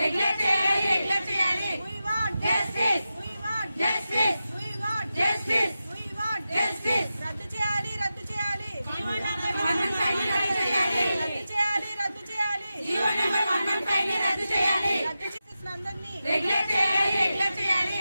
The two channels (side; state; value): both; inverted; correlation -0.92